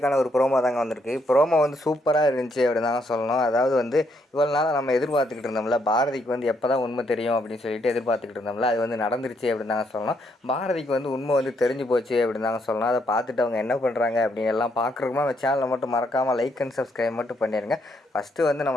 ஒரு promo தாங்க வந்திருக்கு. ப்ரோமோ வந்து சூப்பராக இருந்துச்சு அப்படின்னு தாங்க சொல்லணும். அதாவது வந்து இவ்வளோ நாளாக நம்ம எதிர்பார்த்துக்கிட்டு இருந்தோம்ல, பாரதிக்கு வந்து எப்போ தான் உண்மை தெரியும் அப்படின்னு சொல்லிட்டு எதிர்பார்த்துக்கிட்டு இருந்தோம்ல, அது வந்து நடந்துருச்சு அப்படின்னு தாங்க சொல்லணும். பாரதிக்கு வந்து உண்மை வந்து தெரிஞ்சு போச்சு அப்படின்னு தாங்க சொல்லணும். அதை பார்த்துட்டு அவங்க என்ன பண்ணுறாங்க அப்படின்னு எல்லாம் பார்க்குறோமா, அந்த சேனலை மட்டும் மறக்காமல் லைக் அண்ட் சப்ஸ்கிரைப் மட்டும் பண்ணிடுங்க. ஃபஸ்ட்டு வந்து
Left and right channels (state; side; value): normal; both; correlation 0.74